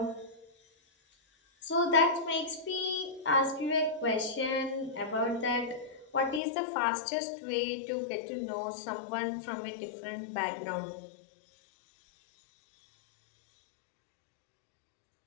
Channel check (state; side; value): drops out; right; at 6.4 s